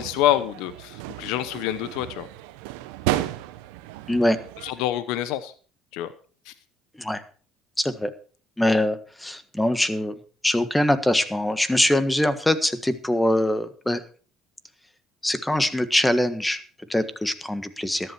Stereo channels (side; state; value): both; normal; correlation 0.81